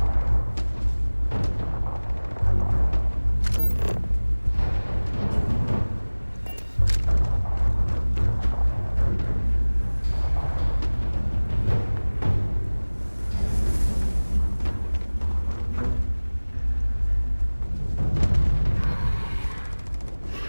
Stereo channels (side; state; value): both; inverted; correlation -1.00